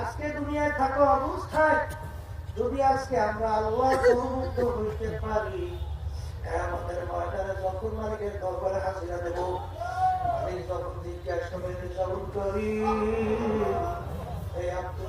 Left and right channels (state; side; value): identical; both; correlation 1.00